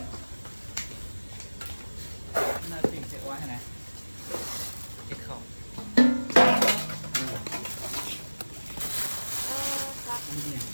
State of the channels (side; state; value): both; inverted; correlation -1.00